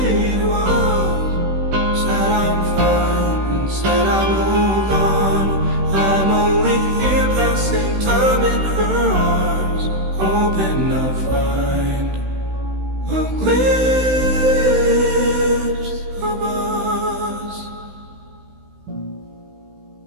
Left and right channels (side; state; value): left; late; 16 ms